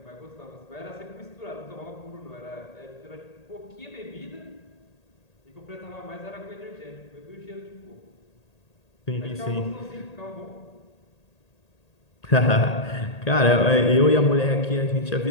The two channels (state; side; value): late; right; 1.8 ms